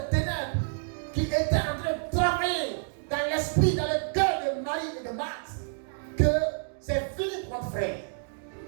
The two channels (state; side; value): silent; left; 59 dB below the other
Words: ténèbres qui étaient en train de travailler dans l'esprit, dans le cœur de Marie et de Marthe, que c'est fini pour notre frère.